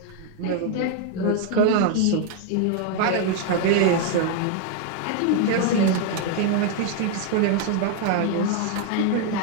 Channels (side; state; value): both; different; correlation 0.00